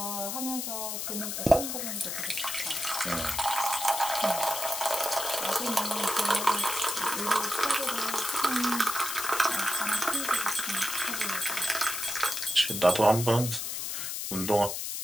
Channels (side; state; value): left; noise; hiss, 3 dB below the sound